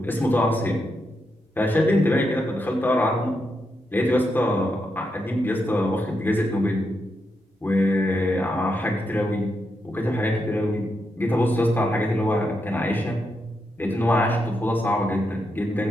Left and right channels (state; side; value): normal; both; correlation 0.83